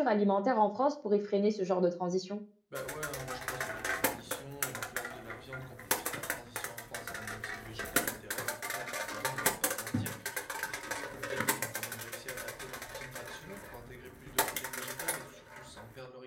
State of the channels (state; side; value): identical; both; correlation 1.00